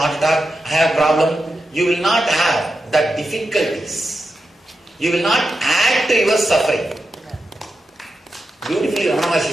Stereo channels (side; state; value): both; normal; correlation 0.89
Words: attack. I have a problem. You will not have the difficulties. You will not add to your suffering. Beautifully Ramana Maharshi